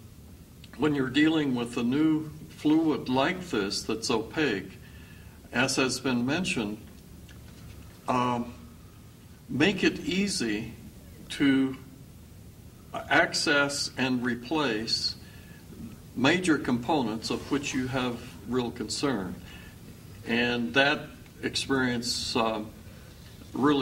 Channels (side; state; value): both; identical; correlation 1.00